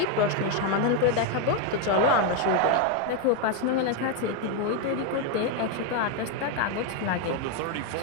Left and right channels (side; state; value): both; different; correlation 0.01